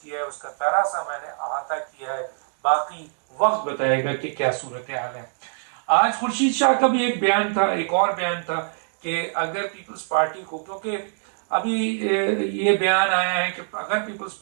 ہے، اس کا ذرا سا میں نے احاطہ کیا ہے، باقی وقت بتائے گا کہ کیا صورتحال ہے۔ آج خورشید شاہ کا بھی ایک بیان تھا، ایک اور بیان تھا کہ اگر پیپلز پارٹی کو، کیونکہ ابھی یہ بیان آیا ہے کہ اگر پیپلز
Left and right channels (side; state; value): left; silent; digital silence